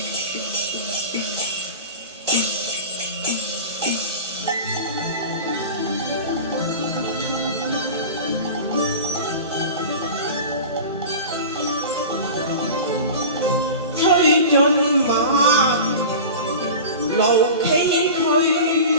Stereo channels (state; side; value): inverted; both; correlation -0.33